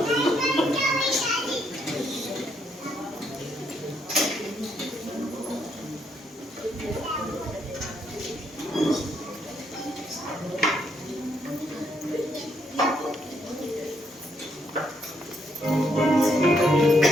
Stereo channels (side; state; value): both; normal; correlation 0.74